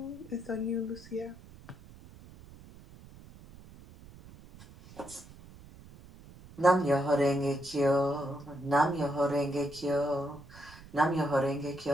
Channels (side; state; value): right; noise; rumble, 20 dB below the sound